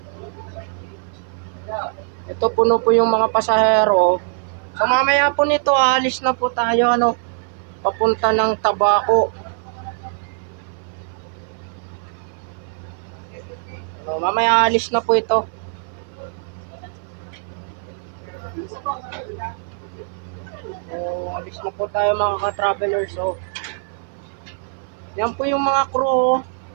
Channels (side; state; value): left; silent; 57 dB below the other